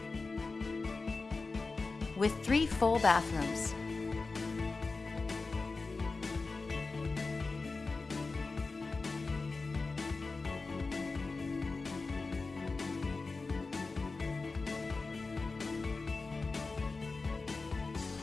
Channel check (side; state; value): right; quieter; 3.9 dB